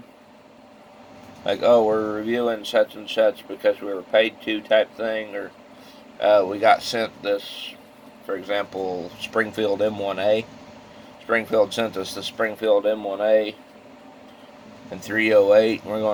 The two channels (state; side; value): identical; both; correlation 1.00